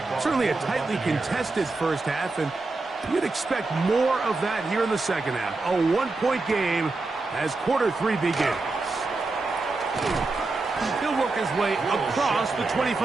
Certainly a tightly contested first half, and you'd expect more of that here in the second half. A 1-point game as quarter 3 begins. He'll work his way across the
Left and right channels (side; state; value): left; quieter; 3.5 dB